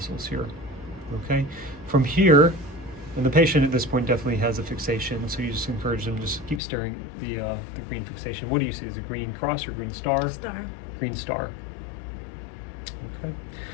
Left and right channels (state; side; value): drops out; right; at 6.6 s